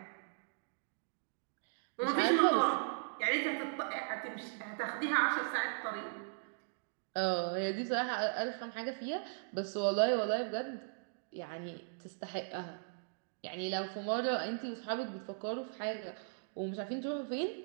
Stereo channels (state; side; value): silent; left; digital silence